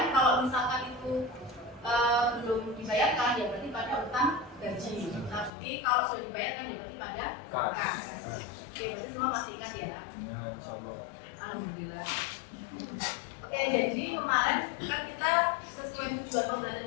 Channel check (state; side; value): drops out; right; at 5.5 s